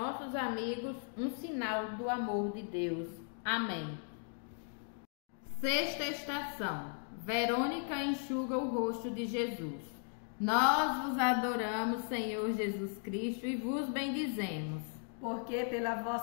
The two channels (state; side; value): silent; right; 53 dB below the other